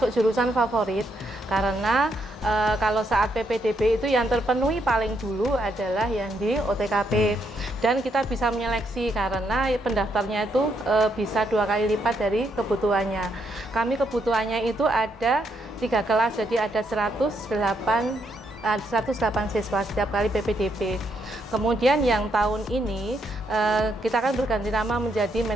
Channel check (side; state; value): both; normal; correlation 0.76